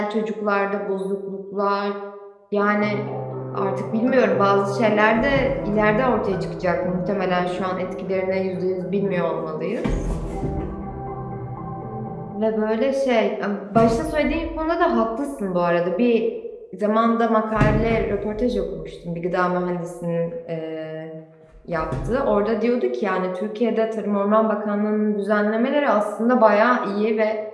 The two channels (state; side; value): identical; both; correlation 1.00